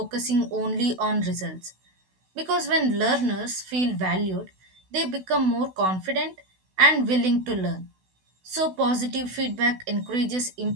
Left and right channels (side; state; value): left; late; 16 ms